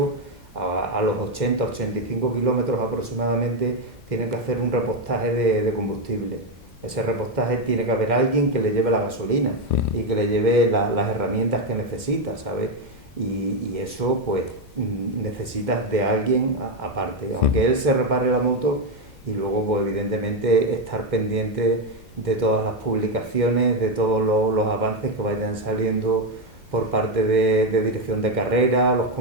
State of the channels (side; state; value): both; normal; correlation 0.06